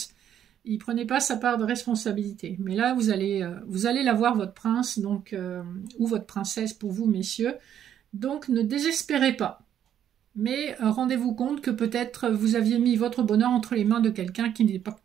il prenait pas sa part de responsabilité. Mais là, vous allez la voir, votre prince, donc, ou votre princesse pour vous, messieurs. Donc, ne désespérez pas. Mais rendez-vous compte que peut-être vous aviez mis votre bonheur entre les mains de quelqu'un qui n'est pas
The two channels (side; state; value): left; quieter; 9.9 dB